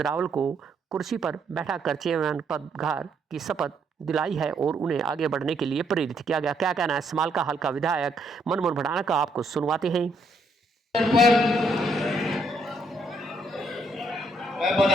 रावल को कुर्सी पर बैठाकर चेयरमैन पदभार की शपथ दिलाई है और उन्हें आगे बढ़ने के लिए प्रेरित किया गया। क्या कहना है समालका हल्का विधायक मनमोहन बढ़ाना का, आपको सुनवाते हैं। मैं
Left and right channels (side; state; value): both; normal; correlation 0.72